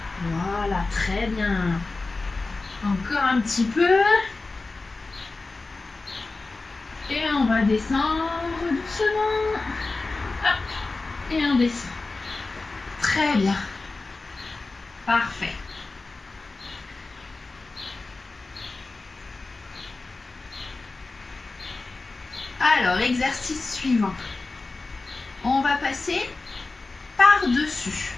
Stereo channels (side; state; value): right; quieter; 3.5 dB